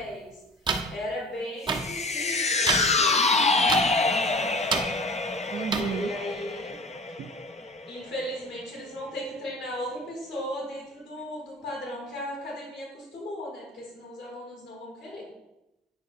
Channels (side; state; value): both; normal; correlation 0.40